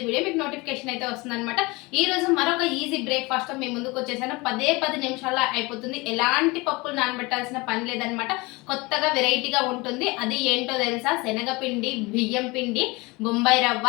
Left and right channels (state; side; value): quieter; right; 24.3 dB